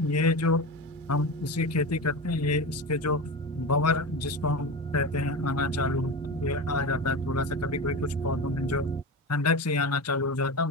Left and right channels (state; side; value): normal; both; correlation 0.24